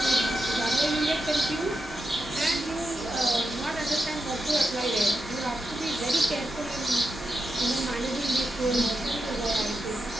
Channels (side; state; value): both; normal; correlation 0.88